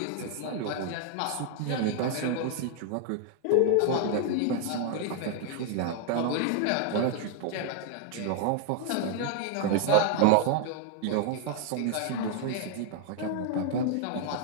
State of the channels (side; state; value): both; different; correlation 0.00